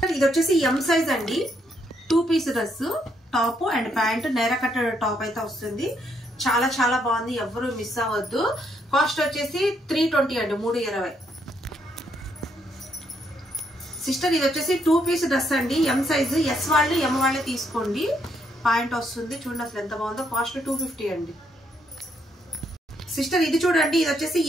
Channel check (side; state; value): both; normal; correlation 0.74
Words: ఇది వచ్చేసి ఎం సైజ్ అండి 2 piece dress top and pant నేర కట్ట టాప్ అయితే వస్తుంది చాలా బాగుంది ఎవరు మిస్ అవ్వద్దు కాస్ట్ వచ్చేసి 320 అండి 320 సిస్టర్ ఇది వచ్చేసి 2 పీస్ డ్రెస్ అండి ఎం సైజ్ ఎస్ వాళ్ళు ఎం వాళ్ళే తీసుకోండి పాయింట్ వస్తుంది చూడండి అసలు ఎంత బాగుందో కాస్ట్ 250 అండి సిస్టర్ ఇది చూడండి ఇది వచ్చేసి